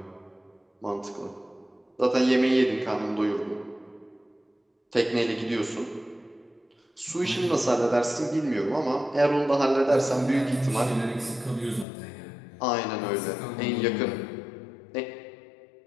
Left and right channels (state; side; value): drops out; right; at 11.9 s